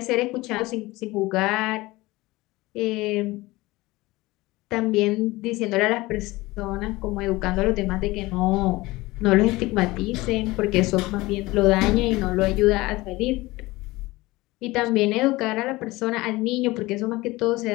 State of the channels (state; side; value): quieter; right; 20.3 dB